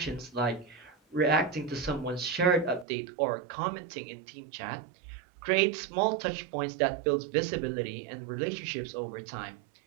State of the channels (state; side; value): drops out; left; at 2.9 s